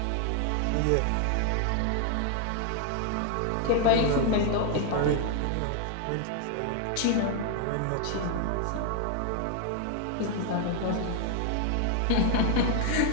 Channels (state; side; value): different; both; correlation 0.00